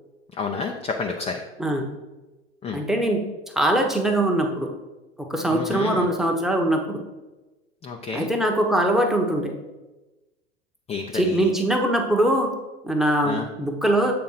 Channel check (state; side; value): normal; both; correlation 0.58